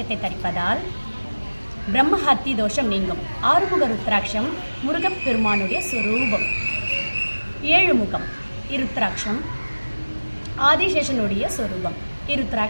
தரிப்பதால் பிரம்மஹத்தி தோஷம் நீங்கும். 6 முக ருத்ராட்சம் முருகப்பெருமானுடைய சொரூபம். 7 முகம் இருத்ராட்சம் ஆதிசேஷனுடைய சொரூபம்.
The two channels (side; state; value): both; inverted; correlation -1.00